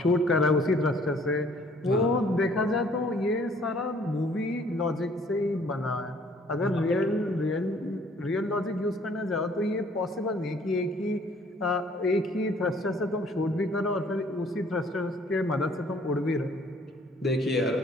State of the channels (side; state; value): both; normal; correlation 0.58